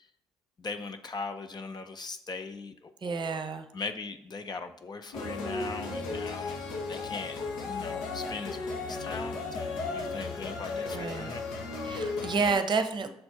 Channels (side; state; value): both; normal; correlation 0.52